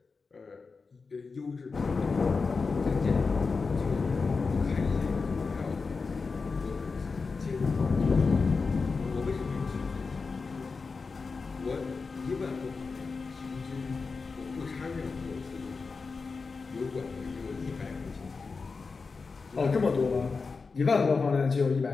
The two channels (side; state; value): right; quieter; 4.5 dB